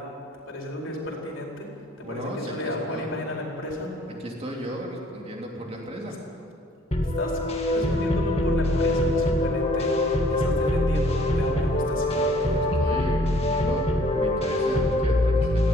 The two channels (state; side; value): normal; both; correlation 0.58